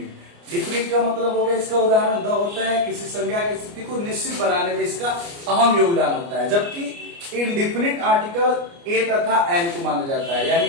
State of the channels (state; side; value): late; left; 29 ms